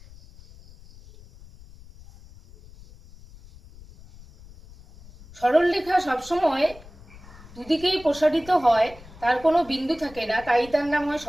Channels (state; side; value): noise; left; rumble, 21 dB below the sound